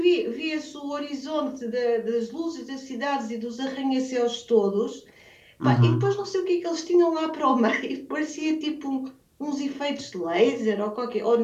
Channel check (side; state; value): both; identical; correlation 1.00